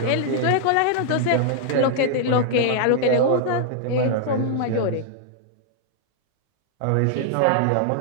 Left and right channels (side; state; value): both; different; correlation -0.01